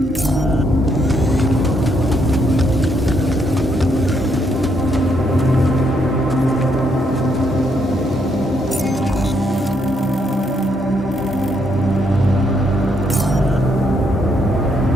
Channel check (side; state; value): both; normal; correlation 0.75